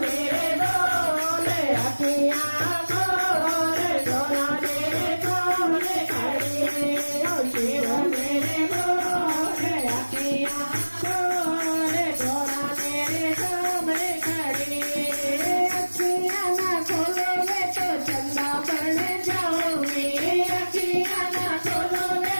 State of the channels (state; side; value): inverted; both; correlation -1.00